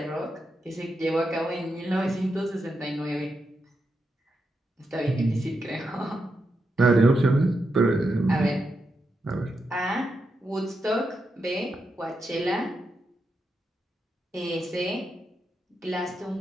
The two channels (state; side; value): normal; both; correlation 0.85